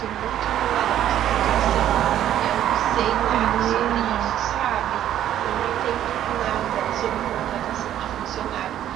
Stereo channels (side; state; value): left; quieter; 11.5 dB